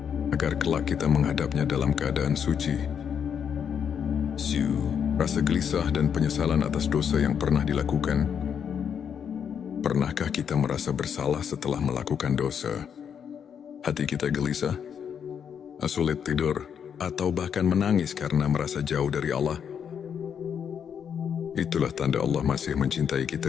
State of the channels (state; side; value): quieter; right; 7.8 dB